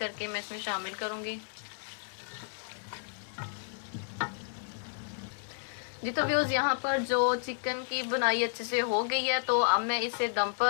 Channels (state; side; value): silent; right; digital silence